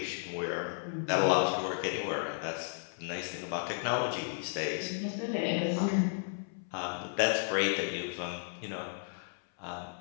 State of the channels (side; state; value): right; silent; 55 dB below the other